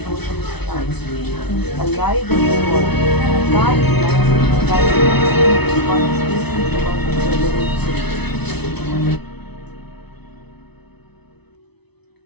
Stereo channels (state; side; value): late; right; 0.99 ms